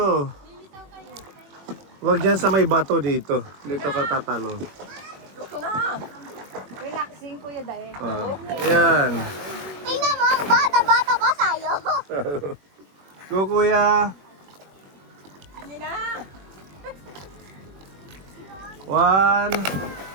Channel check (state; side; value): late; left; 21 ms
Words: Huwag dyan sa may bato dito. Dito ka tatalo. Relaxing kuya Dae. Ah, yan. Tingnan mo, ang bata-bata pa sa'yo. Go kuya. One,